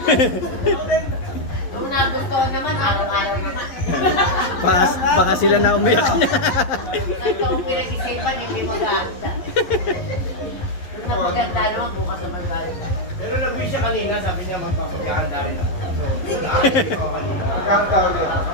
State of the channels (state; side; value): late; right; 11 ms